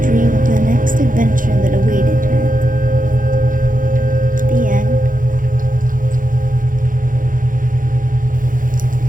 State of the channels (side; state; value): left; late; 0.39 ms